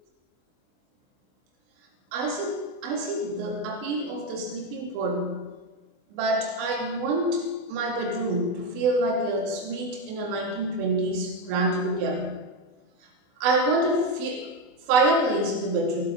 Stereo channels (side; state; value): left; late; 24 ms